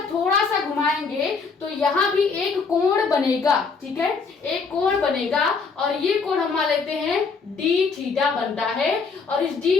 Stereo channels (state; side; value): quieter; right; 4.9 dB